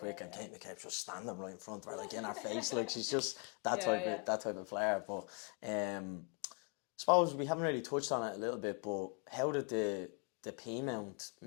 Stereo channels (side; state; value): right; quieter; 34.9 dB